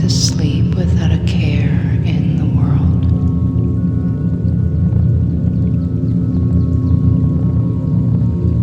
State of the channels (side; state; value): both; identical; correlation 1.00